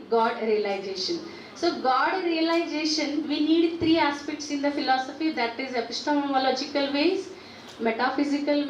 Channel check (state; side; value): identical; both; correlation 1.00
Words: God realization. So God realization, we need three aspects in the philosophy, that is epistemological ways, metaphysical